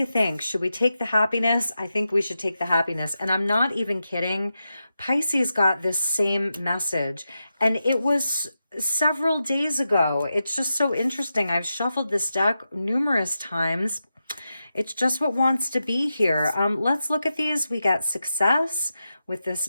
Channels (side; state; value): both; inverted; correlation -0.89